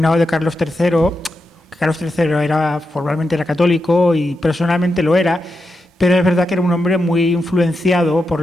de Carlos III, formalmente era católico y personalmente lo era, pero es verdad que era un hombre muy influenciado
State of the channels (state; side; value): normal; both; correlation 0.87